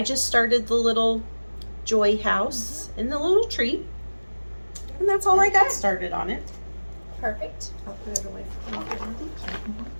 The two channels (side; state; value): both; inverted; correlation -1.00